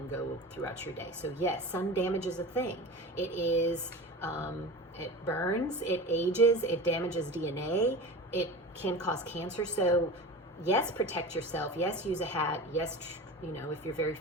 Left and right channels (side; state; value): both; normal; correlation 0.32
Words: go throughout your day. So yes, sun damage is a thing. It is, it burns, it ages, it damages DNA, it can cause cancer. So yes, protect yourself. Yes, use a hat. Yes, if you're very